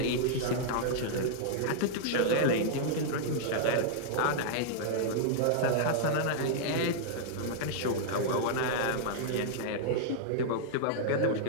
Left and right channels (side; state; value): both; different; correlation -0.01